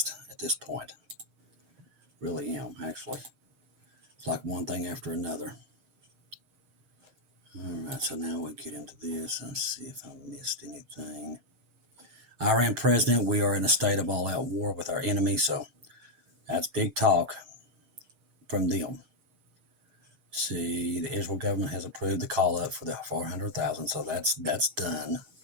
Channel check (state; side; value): late; left; 6.5 ms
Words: at this point. Really am, actually. It's like one thing after another. All right, so now we'll get into this and see if I missed anything. Iran president, we are in a state of all-out war with our enemy, so that's big talk from them. See, the Israel government has approved the call-up for the 400,000, so that's done.